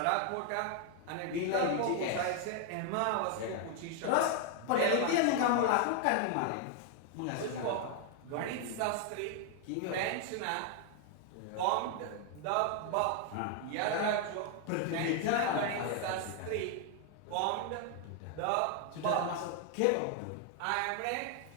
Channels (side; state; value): both; different; correlation 0.00